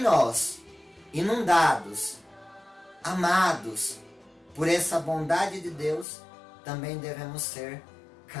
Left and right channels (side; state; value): right; drops out; at 6.1 s